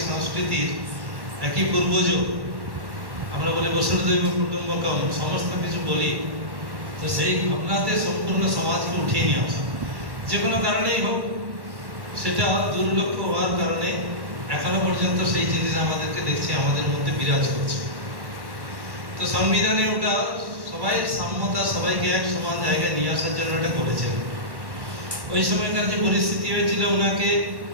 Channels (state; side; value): late; left; 1.1 ms